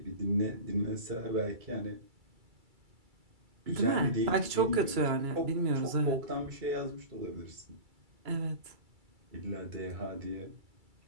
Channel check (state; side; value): late; left; 2.3 ms